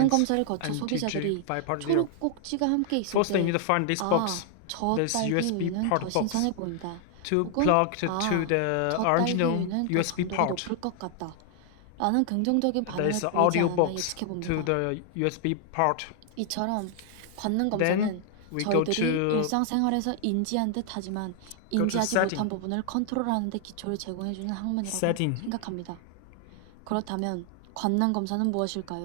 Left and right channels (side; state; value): both; different; correlation 0.00